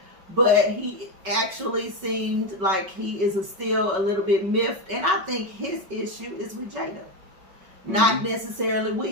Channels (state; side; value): late; left; 5.3 ms